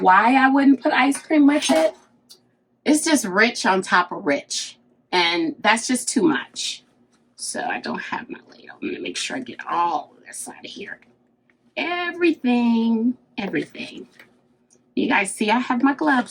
I wouldn't put ice cream with it? It's just rich on top of rich. And that's just too much. So I don't have my ladle. I'm going to make sure I get all of this out of here. Everything. You guys see I have my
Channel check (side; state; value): both; identical; correlation 1.00